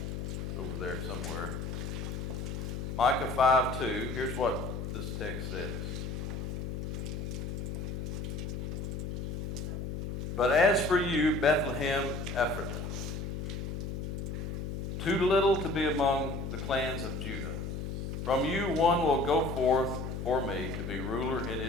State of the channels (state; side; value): noise; left; hum, 4 dB below the sound